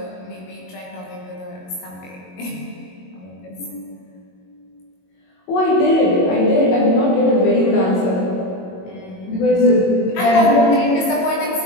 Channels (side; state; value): right; late; 22 ms